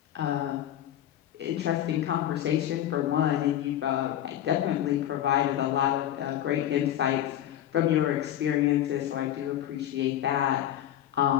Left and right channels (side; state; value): right; quieter; 11.8 dB